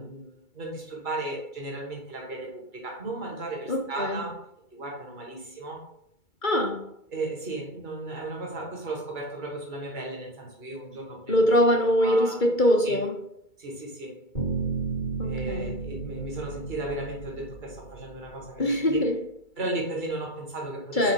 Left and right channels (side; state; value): right; late; 2.3 ms